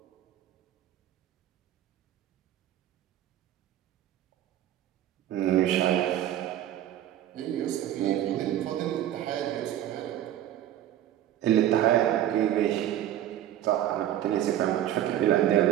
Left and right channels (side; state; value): left; quieter; 12.0 dB